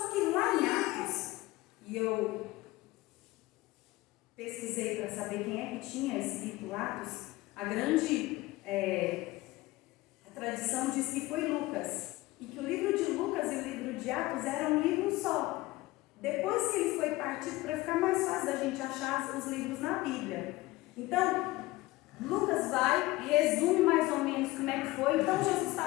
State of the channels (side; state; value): right; quieter; 19.3 dB